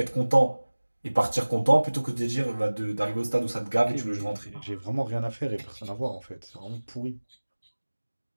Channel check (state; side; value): inverted; both; correlation -1.00